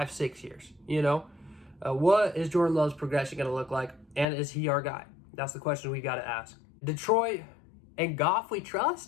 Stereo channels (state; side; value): drops out; right; at 4.2 s